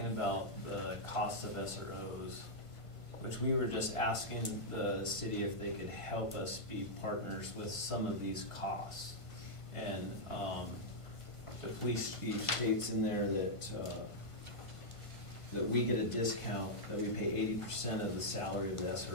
about the cost of SROs, which we were just asking the city if they could help us be partners with some of these costs. And the police chief states in there that we get a discount, that we pay 80% of the salary of the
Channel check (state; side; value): late; right; 1.5 ms